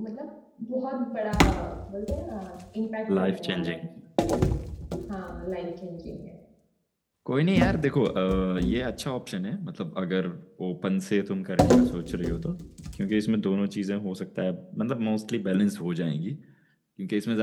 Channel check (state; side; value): identical; both; correlation 1.00